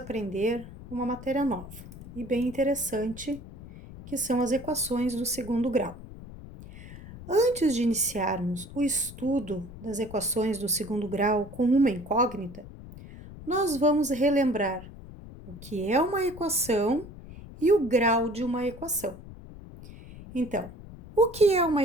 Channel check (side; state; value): left; noise; rumble, 15 dB below the sound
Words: uma matéria nova e bem interessante, que são as equações do segundo grau. Antes de iniciarmos o estudo das equações do segundo grau com uma incógnita, nós vamos relembrar o que é uma equação e o grau de uma equação. Então, o que é uma